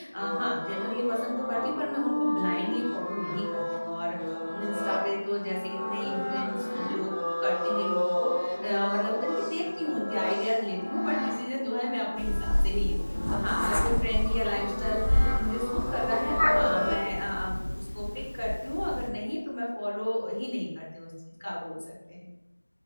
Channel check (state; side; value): inverted; both; correlation -1.00